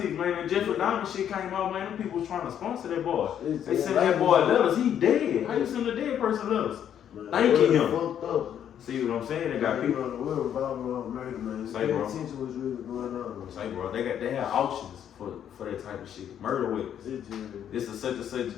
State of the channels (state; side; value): quieter; right; 9.5 dB